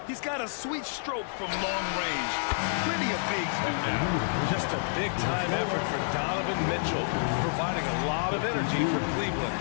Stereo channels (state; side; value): silent; right; digital silence